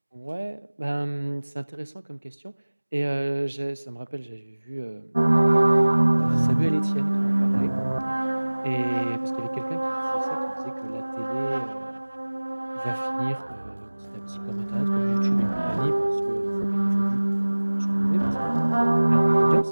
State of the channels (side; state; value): both; inverted; correlation -1.00